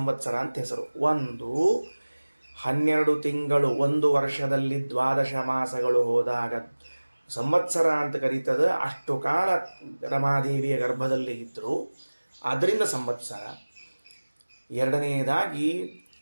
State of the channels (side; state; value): both; inverted; correlation -1.00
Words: ಅಂತ ಹೆಸರು. ಒಂದು, 12 ತಿಂಗಳು ಒಂದು ವರ್ಷದಲ್ಲಿ 12 ಮಾಸಗಳು ಹೋದಾಗ ಸಂವತ್ಸರ ಅಂತ ಕರೀತದೆ. ಅಷ್ಟು ಕಾಲ ರಮಾದೇವಿಯ ಗರ್ಭದಲ್ಲಿ ಇದ್ದರು, ಅದರಿಂದ ಸಂವತ್ಸರ. ಎರಡನೆಯದಾಗಿ